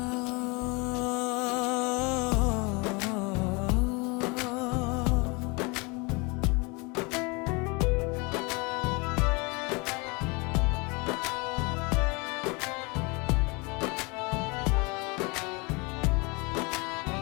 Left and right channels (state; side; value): quieter; right; 28.5 dB